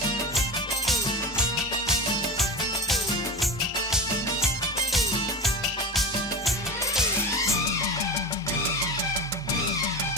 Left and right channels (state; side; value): normal; both; correlation 0.28